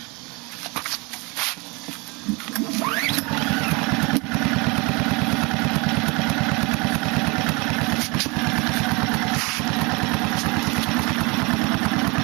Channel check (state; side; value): quieter; left; 27.6 dB